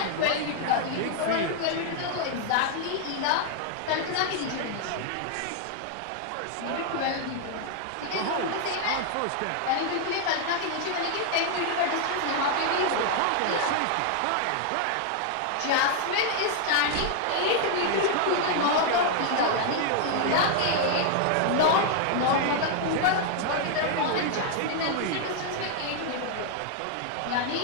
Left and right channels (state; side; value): different; both; correlation 0.00